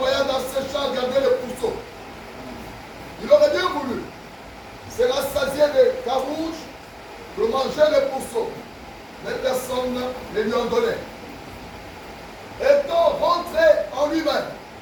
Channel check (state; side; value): identical; both; correlation 1.00